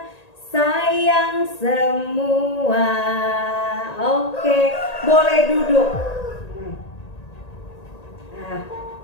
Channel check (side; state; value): right; late; 1.8 ms